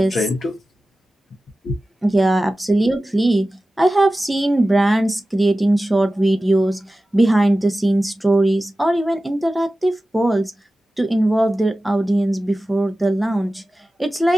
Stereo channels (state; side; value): normal; both; correlation 0.95